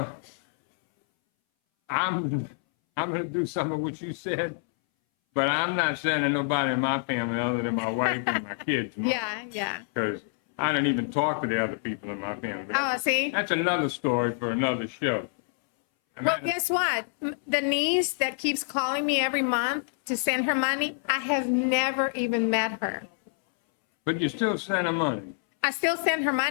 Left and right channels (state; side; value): silent; right; 60 dB below the other